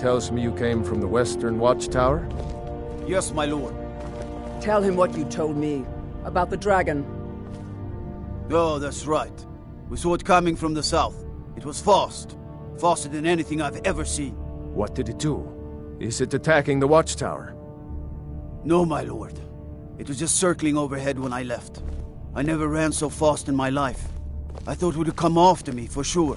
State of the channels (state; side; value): identical; both; correlation 1.00